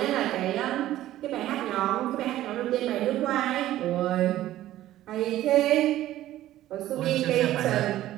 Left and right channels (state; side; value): quieter; left; 14.0 dB